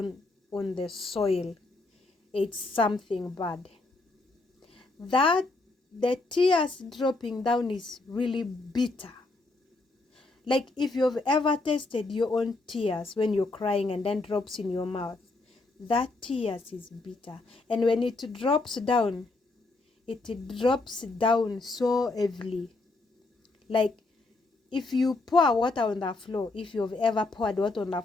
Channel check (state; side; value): quieter; right; 3.2 dB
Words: on the soil, it's something bad. That the tears dropping down is really bitter. Like if you've ever tasted your own tears when you're crying and then drops in your mouth, that tears is bitter. And when it drops down so heavily. Like if you pour water on the floor, if you've ever poured water on the